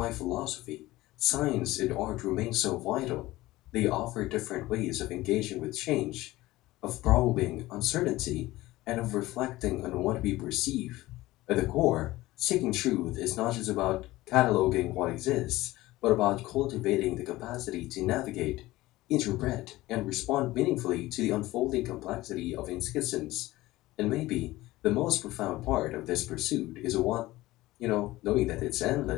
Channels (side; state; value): right; quieter; 18.0 dB